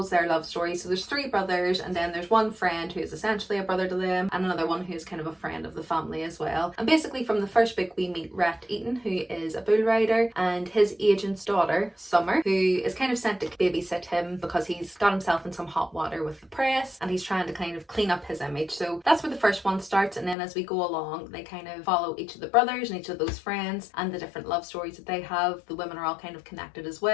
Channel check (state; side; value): drops out; right; at 20.4 s